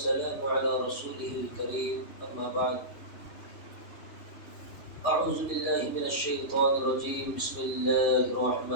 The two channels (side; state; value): right; late; 3.1 ms